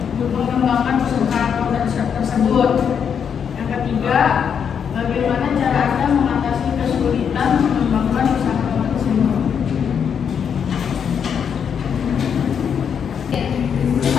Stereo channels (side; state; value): right; quieter; 7.4 dB